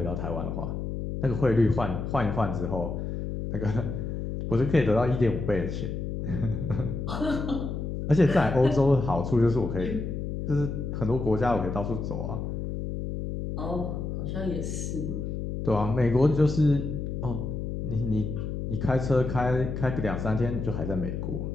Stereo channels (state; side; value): noise; left; hum, 4 dB below the sound